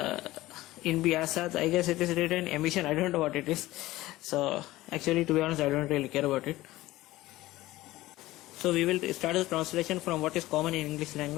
in bi'asat, I guess it is written emission. I don't know what it is. So actually, to be honest, I don't really care about it. So we will start the translation from what is common in English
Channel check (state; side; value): quieter; right; 17.3 dB